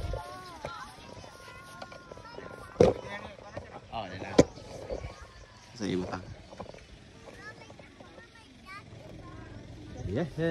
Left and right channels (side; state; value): both; identical; correlation 1.00